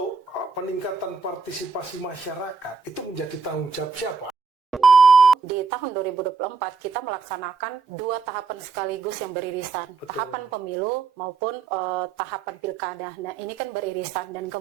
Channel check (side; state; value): left; quieter; 4.9 dB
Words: peningkatan partisipasi masyarakat itu menjadi tanggung jawab siapa? Di tahun 2024 kita melaksanakan 2 tahapan sekaligus yang beririsan. Betul. Tahapan pemilu maupun tahapan pilkada. Nah ini kan beririsan dan